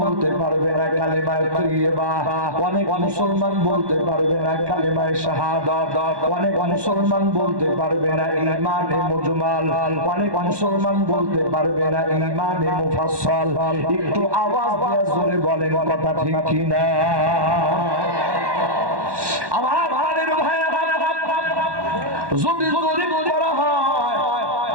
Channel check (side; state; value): left; late; 1.1 ms